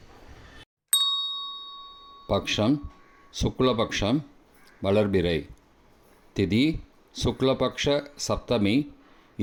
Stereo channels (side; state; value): both; identical; correlation 1.00